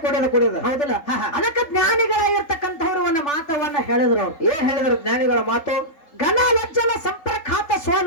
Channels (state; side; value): late; right; 3.4 ms